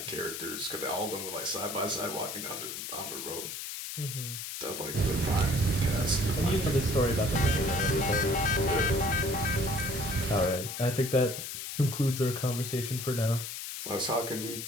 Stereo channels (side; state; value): left; noise; hiss, 7 dB below the sound